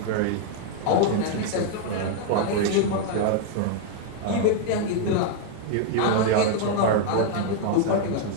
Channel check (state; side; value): different; both; correlation 0.00